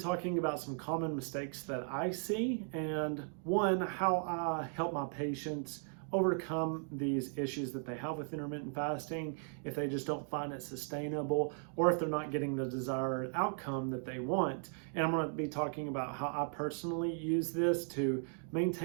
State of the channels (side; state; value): left; silent; 53 dB below the other